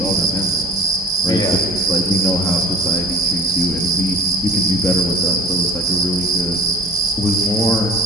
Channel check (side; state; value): both; normal; correlation 0.45